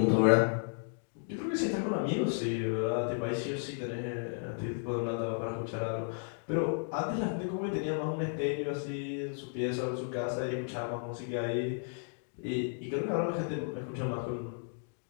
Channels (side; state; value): right; silent; digital silence